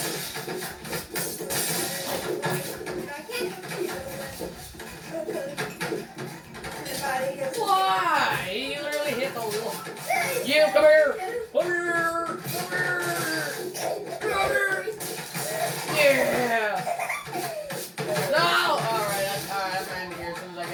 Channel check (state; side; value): identical; both; correlation 1.00